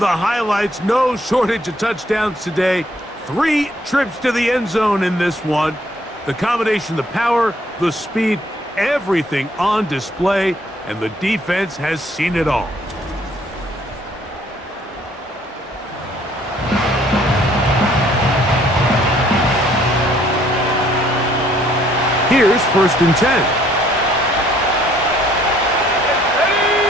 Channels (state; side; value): normal; both; correlation 0.63